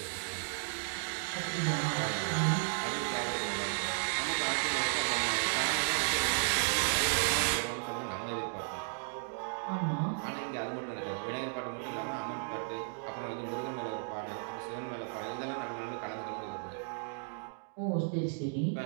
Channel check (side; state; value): left; silent; 55 dB below the other